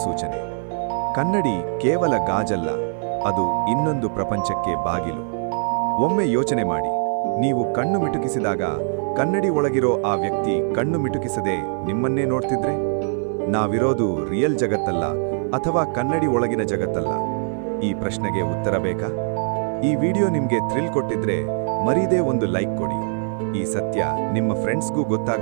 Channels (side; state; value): left; silent; 56 dB below the other